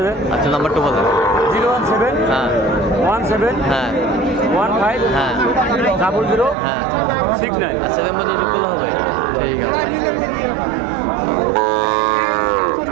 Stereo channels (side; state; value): left; drops out; at 6.6 s